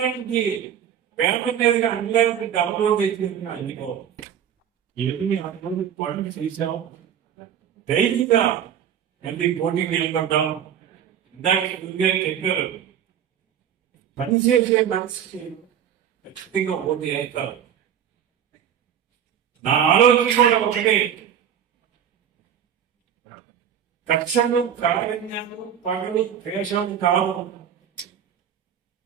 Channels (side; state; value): left; quieter; 9.0 dB